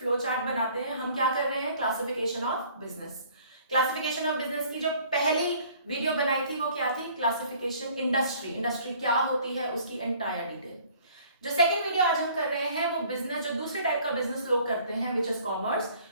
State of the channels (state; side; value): inverted; both; correlation -0.55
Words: चार्ट बनाते हैं. हम क्या कर रहे हैं? Classification of business. Classification of business की जो पहली वीडियो बनाई थी वो क्या थी? क्लासिफिकेशन इंडस्ट्री क्या होती है उसकी एंटायर डिटेल. जो सेकंड वीडियो आज हम कर रहे हैं वो बिजनेस, जो दूसरे टाइप का बिजनेस लोग करते हैं, which is commerce,